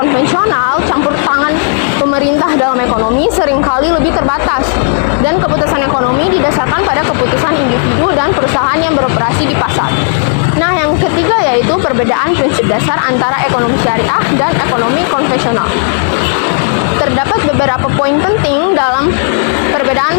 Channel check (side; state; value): right; silent; digital silence